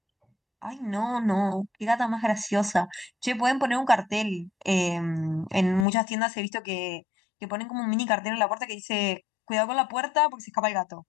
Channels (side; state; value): right; drops out; at 5.9 s